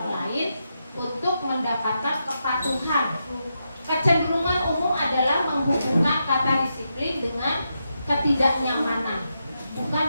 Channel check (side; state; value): both; inverted; correlation -0.85